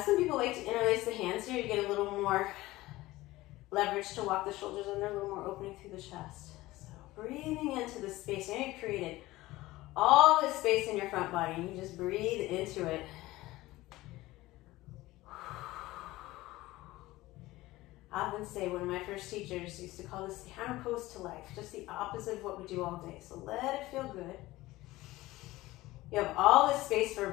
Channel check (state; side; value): quieter; right; 18.2 dB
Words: people like to interlace the hands here. You get a little more leverage to walk the shoulders under, a little more opening through the chest. So breathing into the space. Now you've created all this space in your front body, and you just breathe into it. I often say, one of my first teachers used to call this the hammer pose to life, just the opposite of what we do all day. So let it feel good. You have all this space for